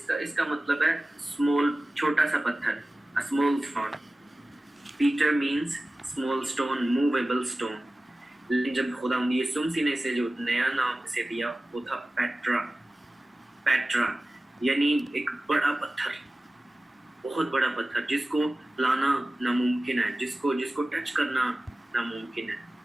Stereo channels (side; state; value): both; normal; correlation 0.97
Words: इसका मतलब है स्मॉल, छोटा सा पत्थर, a small stone. Peter means small stone, movable stone. लेकिन जब खुदा यीशु मसीह ने इसे जो नया नाम इसे दिया वो था पेट्रा। पेट्रा यानी एक बड़ा पत्थर, बहुत बड़ा पत्थर जिसको लाना नामुमकिन है, जिसको टच करना नामुमकिन है।